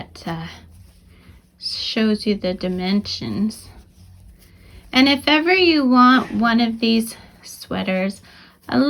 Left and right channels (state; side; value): identical; both; correlation 1.00